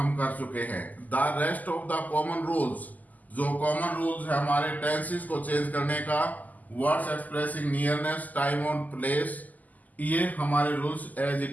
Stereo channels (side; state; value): right; late; 0.080 ms